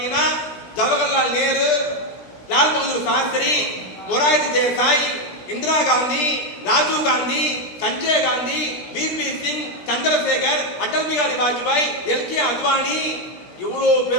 ஜவஹர்லால் நேரு, லால் பகதூர் சாஸ்திரி, மொரார்ஜி தேசாய், இந்திரா காந்தி, ராஜீவ் காந்தி, சஞ்சய் காந்தி, வி.பி. சிங், சந்திரசேகர், அடல் பிஹாரி வாஜ்பாய், எல்.கே. அத்வானி, இவ்வளவு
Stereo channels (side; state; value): right; late; 17 ms